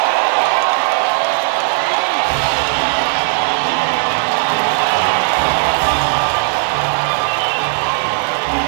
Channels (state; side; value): silent; left; digital silence